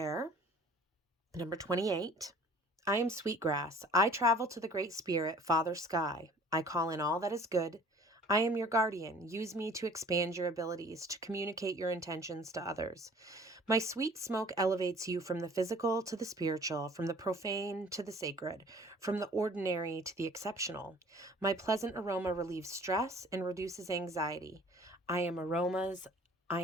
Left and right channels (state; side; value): normal; both; correlation 0.50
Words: number 28. I am Sweetgrass. I travel to the Great Spirit, Father Sky. I call in all that is good. I am your guardian. Use me to expand your abilities, to communicate your intentions to others. My sweet smoke elevates you from the physical to the spiritual, from the profane to the sacred, from the ordinary to the exceptional. My pleasant aroma relieves stress and reduces anxiety. I am aromas. I